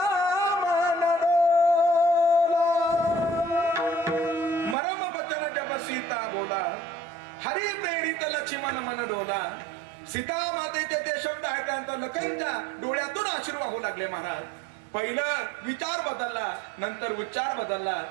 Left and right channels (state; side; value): drops out; left; at 4.8 s